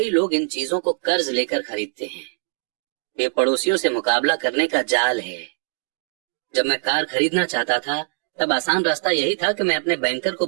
लोग इन चीजों को कर्ज लेकर खरीदते हैं। ये पड़ोसियों से मुकाबला करने का जाल है। जब मैं कार खरीदना चाहता था तब आसान रास्ता यही था कि मैं अपने बैंकर को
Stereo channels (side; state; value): left; silent; digital silence